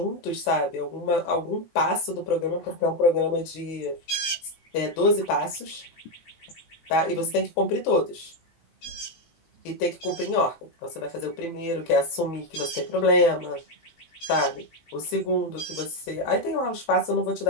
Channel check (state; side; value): late; right; 18 ms